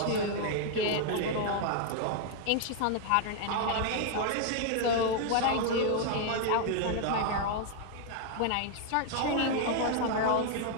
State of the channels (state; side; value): different; both; correlation 0.00